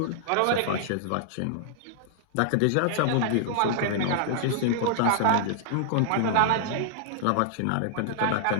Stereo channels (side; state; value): both; different; correlation -0.01